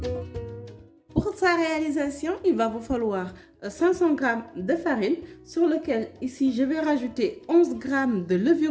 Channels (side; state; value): both; identical; correlation 1.00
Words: Pour sa réalisation, il va vous falloir 500 g de farine sur lequel ici je vais rajouter 11 g de